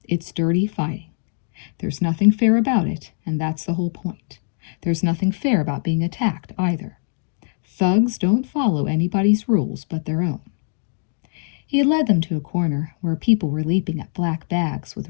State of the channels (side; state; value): right; silent; digital silence